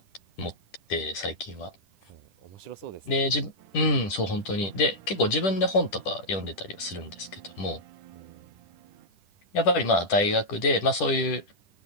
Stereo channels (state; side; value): late; right; 10 ms